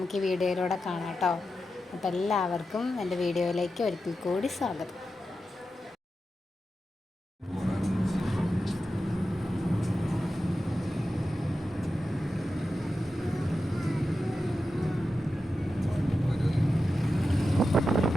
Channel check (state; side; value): normal; both; correlation 0.90